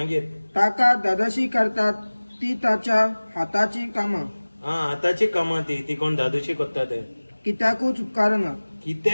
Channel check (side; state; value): both; inverted; correlation -1.00